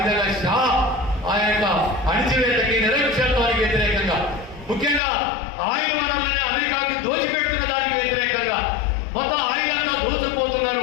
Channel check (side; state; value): right; drops out; at 5.0 s